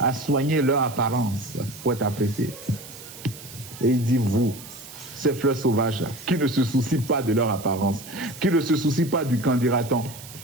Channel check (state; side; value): noise; right; hiss, 16 dB below the sound